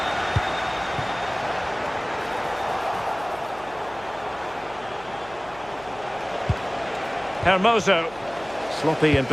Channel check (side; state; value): left; noise; hum, 21 dB below the sound